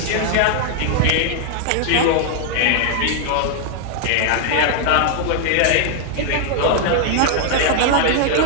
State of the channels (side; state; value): both; different; correlation 0.00